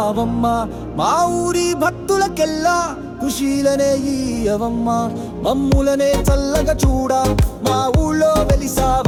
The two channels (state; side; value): identical; both; correlation 1.00